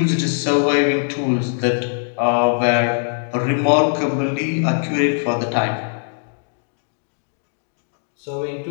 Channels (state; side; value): silent; right; digital silence